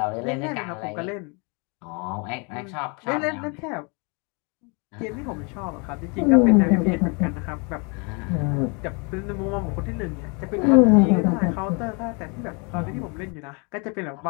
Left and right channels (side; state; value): right; quieter; 33.0 dB